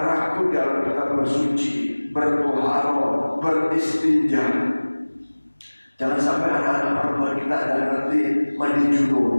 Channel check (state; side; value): inverted; both; correlation -1.00